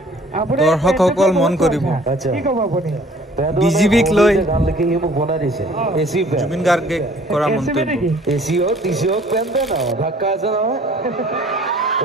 আপুনি দৰ্শকসকল মন কৰিব কি ক'ব আপুনি? বিজেপিক লৈ গান লিখি সি মোক বনাই দিছে। এচি জুবিন গাৰ্গে কৰা মন্তব্য এচি হওক টিচি হওক পেণ্ট পেণ্ট আৰু ধাক্কা আছে নহয়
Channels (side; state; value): both; normal; correlation 0.54